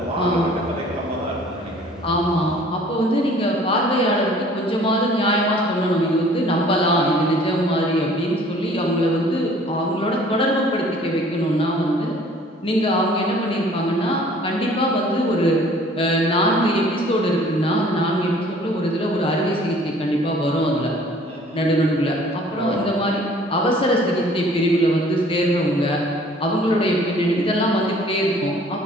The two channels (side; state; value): both; normal; correlation 0.53